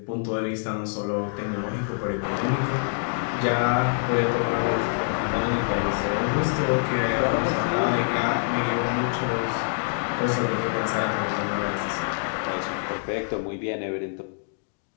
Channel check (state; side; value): silent; right; digital silence